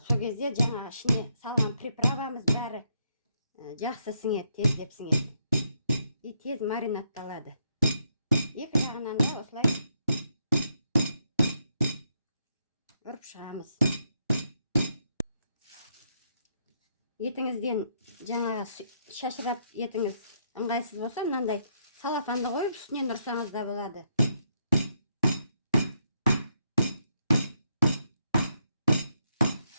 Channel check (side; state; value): both; inverted; correlation -0.77